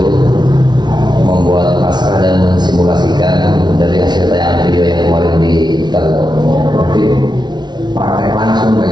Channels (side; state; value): left; late; 0.20 ms